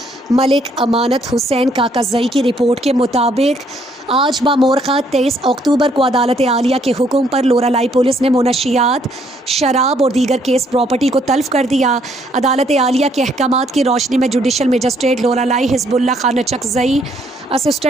ملک امانت حسین کاکزئی کی رپورٹ کے مطابق آج بامورخہ 23 اکتوبر کو عدالت عالیہ کے حکم پر لورالائی پولیس نے منشیات، شراب اور دیگر کیس پراپرٹی کو تلف کر دیا۔ عدالت عالیہ کے احکامات کی روشنی میں جوڈیشل مجسٹریٹ لورالائی حزب اللہ خان نچکزئی،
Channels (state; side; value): normal; both; correlation 0.68